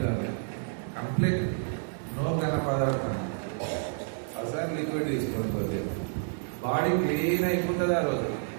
కాదు. కంప్లీట్ నో ఘన పదార్థం. అసలు లిక్విడ్ తీసుకోకపోతే బాడీ క్లీన్ అయిపోతుంది. ఆ రోజు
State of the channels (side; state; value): left; silent; digital silence